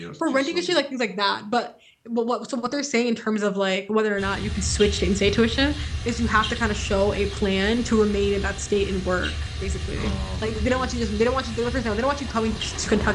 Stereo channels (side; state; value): both; identical; correlation 1.00